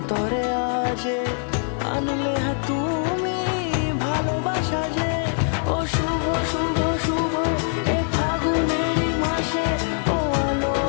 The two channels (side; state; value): right; silent; 60 dB below the other